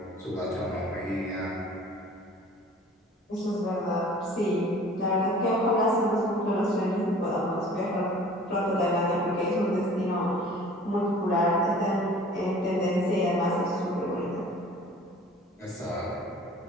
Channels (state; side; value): normal; both; correlation 0.47